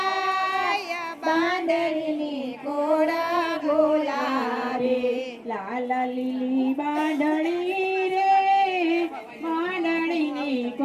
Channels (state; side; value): identical; both; correlation 1.00